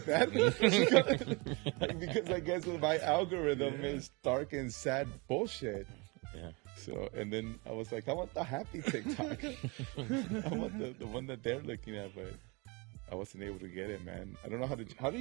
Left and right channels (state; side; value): quieter; left; 28.6 dB